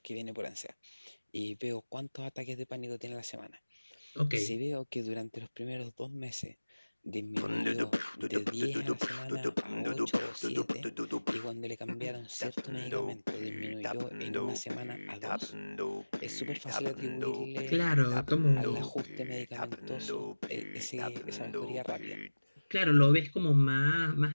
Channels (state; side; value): inverted; both; correlation -1.00